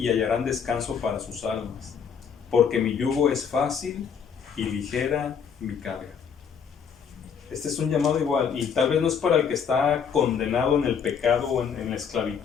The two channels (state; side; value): quieter; right; 7.0 dB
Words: hallarán descanso para sus almas, porque mi yugo es fácil y ligera mi carga. Este es un llamado igual, y tal vez no es para el que está condenado en el pecado o en la